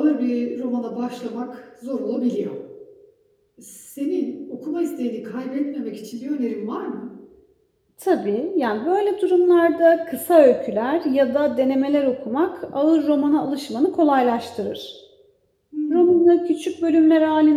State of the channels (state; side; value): identical; both; correlation 1.00